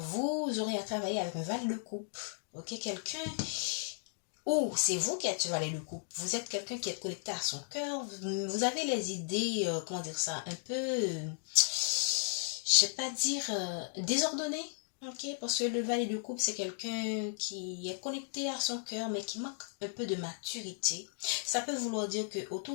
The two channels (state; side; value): silent; right; digital silence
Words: aurez à travailler avec un valet de coupe, ok, quelqu'un, ou c'est vous qui êtes valet de coupe, vous êtes quelqu'un qui est connecté à son cœur, vous avez les idées, comment dire ça, un peu, je sais pas dire, désordonnées. Ok, parce que le valet de coupe, c'est quelqu'un qui est connecté à son cœur, mais qui manque un peu de maturité. Ça peut vouloir dire que